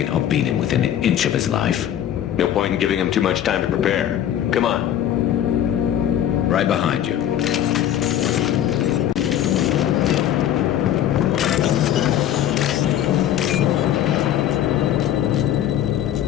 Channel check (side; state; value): right; quieter; 10.9 dB